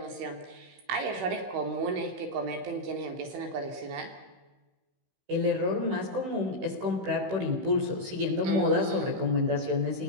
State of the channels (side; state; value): left; late; 16 ms